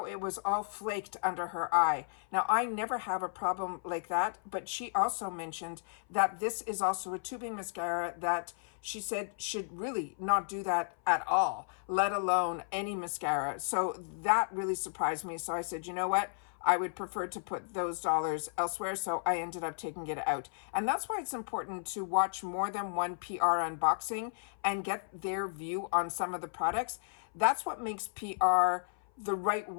it was all flaked under her eye. Now, I never have a problem like that, but she also mentioned that this is also a tubing mascara that she said should really not do that at all, let alone any mascara. So that really surprised me. So I said, you know what? I would prefer to put those dollars elsewhere. So I ended up taking it out. And that's why it's important to watch more than one PR unboxing and get their view on some of the products. That's what makes PR the right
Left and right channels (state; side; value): silent; right; 55 dB below the other